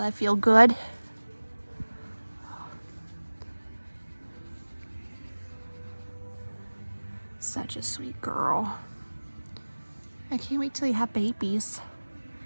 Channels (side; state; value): both; inverted; correlation -1.00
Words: feel good. Such a sweet girl. I can't wait till you have babies.